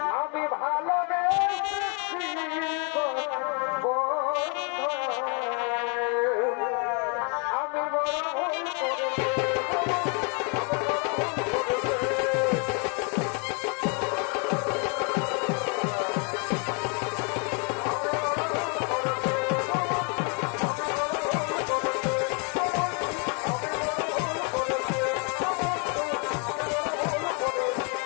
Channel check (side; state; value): right; quieter; 35.6 dB